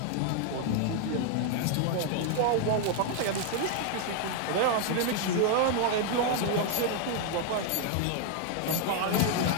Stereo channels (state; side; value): different; both; correlation 0.00